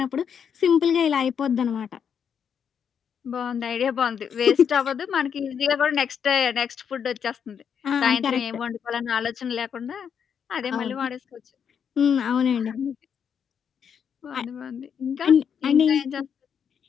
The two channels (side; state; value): right; quieter; 7.6 dB